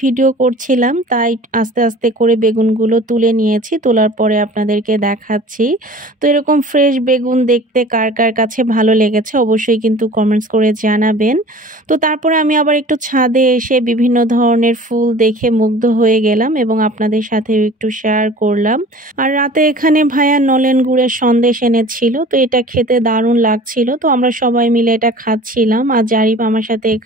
ভিডিও করছিলাম, তাই আস্তে আস্তে করে বেগুনগুলো তুলে নিয়েছি, তোলার পরে আপনাদেরকে দেখাচ্ছি। তো এরকম ফ্রেশ বেগুন দেখতে কার কার কাছে ভালো লেগেছে অবশ্যই কিন্তু কমেন্টস করে জানাবেন। তো তারপরে আমি আবার একটু ছাদে এসে বিভিন্ন ধরনের ফুল দেখে মুগ্ধ হয়ে গেলাম এবং আপনাদের সাথে একটু শেয়ার করলাম। আর রাতে এখানে ভাইয়া নলেন গুড়ের সন্দেশ এনেছিল, তো এটা খেতে দারুণ লাগছিল। তো আমরা সবাই মিলে এটা খাচ্ছিলাম, আর জারিফ আমার সাথে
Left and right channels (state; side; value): normal; both; correlation 0.44